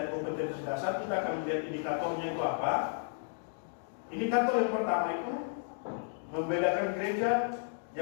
kompetensi dasar, kita akan melihat indikatornya itu apa. Indikator yang pertama itu membedakan gereja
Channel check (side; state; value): right; silent; digital silence